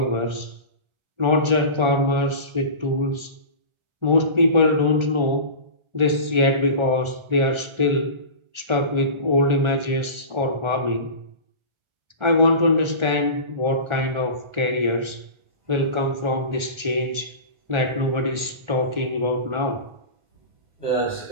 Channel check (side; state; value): left; late; 1.4 ms